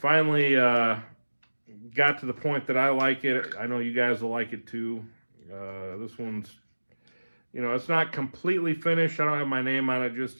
got to the point that I like it. I know you guys will like it too. This one's, it's not completely finished. I don't have my name on it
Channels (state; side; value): inverted; both; correlation -1.00